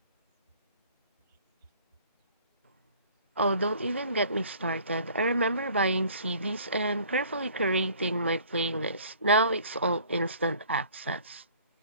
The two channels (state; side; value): inverted; both; correlation -0.52